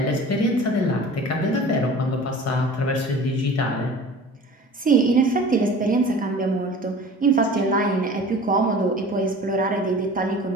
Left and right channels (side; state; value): both; normal; correlation 0.41